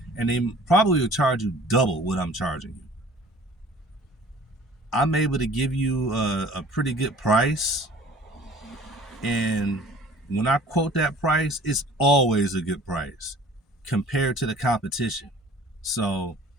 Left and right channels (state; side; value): normal; both; correlation 0.49